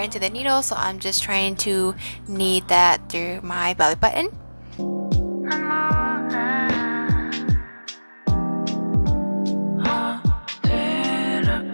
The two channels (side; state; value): both; inverted; correlation -1.00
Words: into the needle, so I'm just trying to knead that through my belly button.